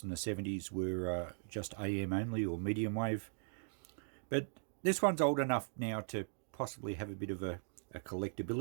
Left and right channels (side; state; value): left; silent; digital silence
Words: from the 70s, were just AM only or medium wave. But this one's old enough now to possibly have a bit of a